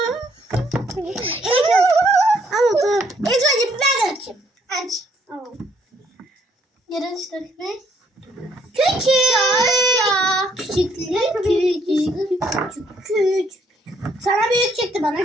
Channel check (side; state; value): both; normal; correlation 0.68